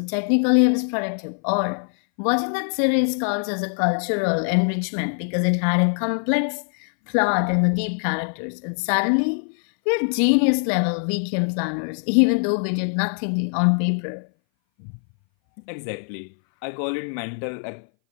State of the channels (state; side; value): silent; right; 60 dB below the other